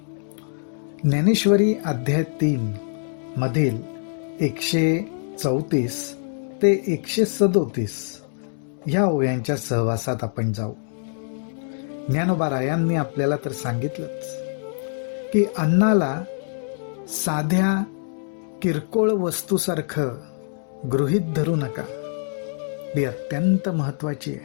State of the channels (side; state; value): right; silent; 62 dB below the other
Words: ज्ञानेश्वरी अध्याय 3 मधील 134 ते 137 या ओव्यांच्या सहवासात आपण जाऊ. ज्ञानोबा रायांनी आपल्याला तर सांगितलंच की अन्नाला साध्या किरकोळ वस्तूसारखं गृहीत धरू नका. ती अत्यंत महत्वाची